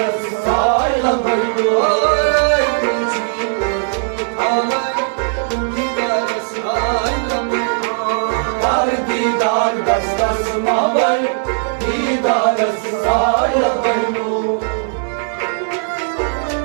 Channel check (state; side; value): silent; left; 68 dB below the other